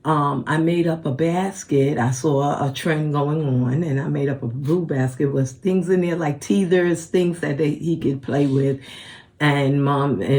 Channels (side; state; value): both; identical; correlation 1.00